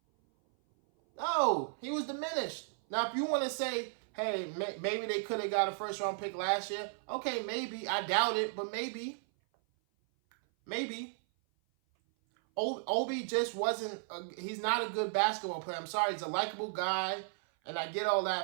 No, he was diminished. Now, if you want to say, hey, maybe they could have got a first-round pick last year, okay, maybe. I doubt it, but maybe. Maybe. Obi just wasn't, he's not a good basketball player. I'm sorry, he's a likable guy, and I get all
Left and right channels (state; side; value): silent; left; 55 dB below the other